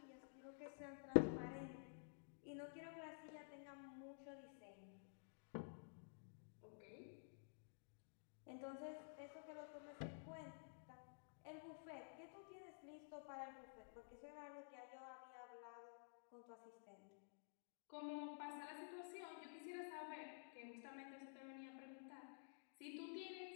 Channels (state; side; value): silent; right; digital silence